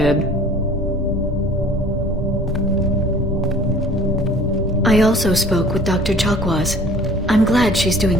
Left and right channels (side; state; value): both; normal; correlation 0.49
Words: I also spoke with Dr. Chakwas. I'm glad she's